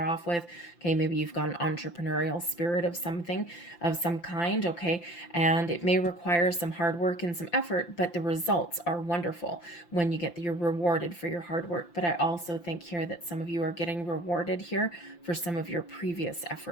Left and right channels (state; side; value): late; right; 5.8 ms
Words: off with. Okay, maybe you've got an entrepreneurial spirit of something, of some kind, okay? And it may require some hard work and some effort, but the results are wonderful when you're rewarded for your hard work. But I also think here that some of you are getting rewarded here for some of your previous